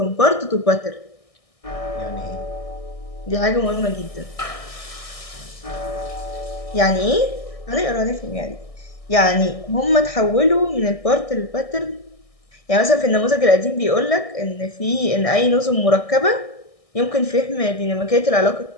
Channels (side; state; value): right; late; 1.6 ms